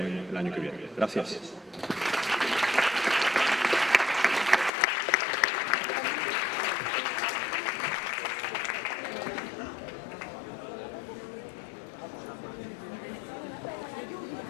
el año que viene. Gracias.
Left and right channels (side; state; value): right; drops out; at 4.7 s